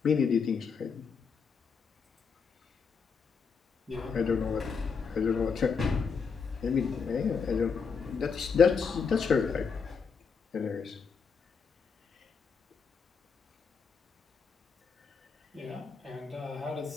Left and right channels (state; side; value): quieter; right; 5.6 dB